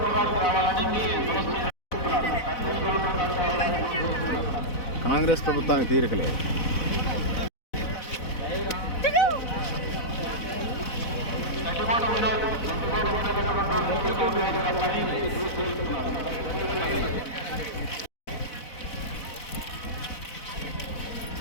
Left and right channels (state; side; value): late; right; 4.1 ms